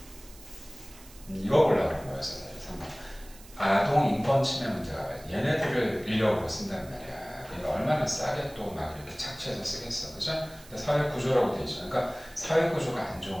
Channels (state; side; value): noise; right; hiss, 21 dB below the sound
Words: 이거 보려고 그런 거였어요. 3번. 아동 인권 침해 문제가 봐요. 얘네들을 인력으로 쓴단 말이야. 그러니까 얼마나 싸게 또 막 이렇게 착취해서 쓰겠어. 그죠? 근데 사회 구조라고 돼 있죠. 그러니까 사회 구조가 안